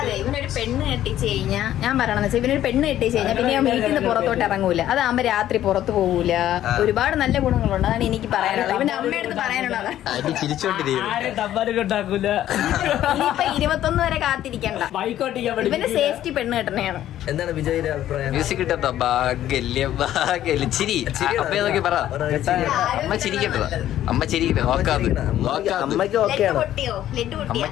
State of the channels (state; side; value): quieter; right; 12.4 dB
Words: ഇവനൊരു പെണ്ണ് കെട്ടിച്ച് കഴിഞ്ഞാൽ, ഞാൻ പറയണെന്ന് വെച്ചാൽ ഇവനൊരു പെണ്ണ് കെട്ടിച്ച് കഴിഞ്ഞാൽ പിന്നെ ഞാൻ വീട്ടിൽ നിന്ന് പുറത്തോട്ട് ഇറങ്ങൂല. അതാകുമ്പോ രാത്രി പുറത്ത് പോകൂല. ഒരുപാട് നല്ല ഗുണങ്ങളുണ്ട്. അതാണ് എനിക്ക് പറയാനുള്ളത്. ഇവന്റെ അമ്മയടുത്ത് പറയാനുള്ളത്. ഇനിയിപ്പൊ 21 വരെ കാത്തിരിക്കണ്ട. ഇവന്റെ സേഫ്റ്റി പെണ്ണ് കെട്ടണയാണ്. എന്താണ് വിജയുടെ അഭിപ്രായം മ്യൂസിക് കിട്ടോ ചിരി അപ്പൊ നോക്കി പറ അമ്മ ചിരിക്കട്ടോ അമ്മ ചിരിക്കട്ടെ നോക്കാത് അമ്മയ്ക്ക് ഓക്കെയാണ് പൊട്ടിയോ? ലെഡ് പൊട്ടിയോ?